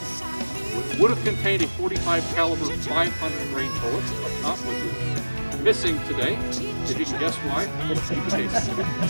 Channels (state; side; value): inverted; both; correlation -1.00